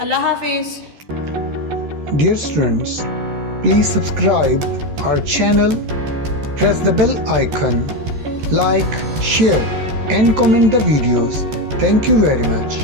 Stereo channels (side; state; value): left; late; 14 ms